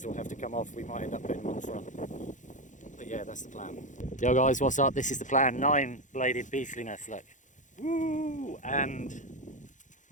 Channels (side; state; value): right; late; 0.36 ms